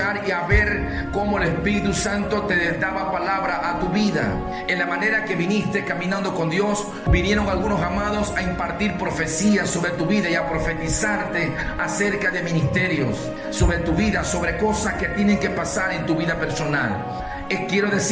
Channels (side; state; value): both; identical; correlation 1.00